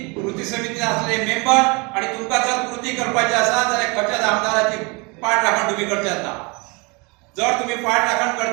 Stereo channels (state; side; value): quieter; left; 28.9 dB